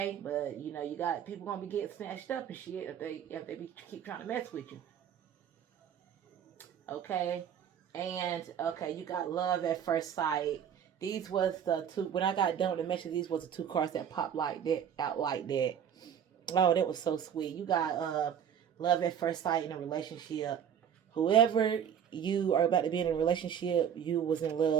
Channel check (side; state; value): left; quieter; 8.6 dB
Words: But you got people gonna be getting snatched up and shit if they keep trying to mess with you. Okay? And okay, you got love at first sight. These was the two, when I got done with the message, these was the two cards that popped like that, out like that. Oh, that was so sweet. You got love at first sight in a relationship. Whoever you are about to be in a relationship, you was in